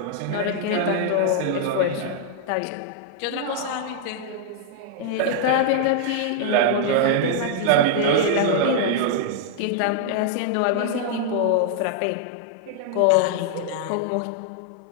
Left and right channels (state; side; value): different; both; correlation -0.01